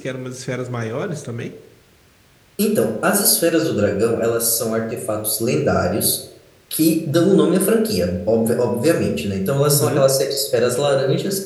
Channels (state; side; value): identical; both; correlation 1.00